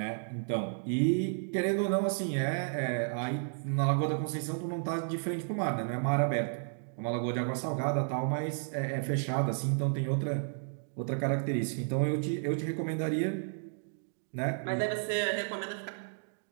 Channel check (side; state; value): left; silent; digital silence